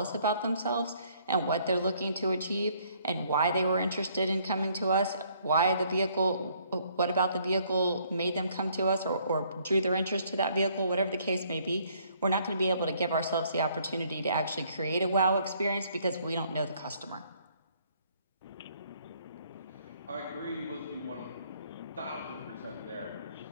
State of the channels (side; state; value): both; inverted; correlation -0.65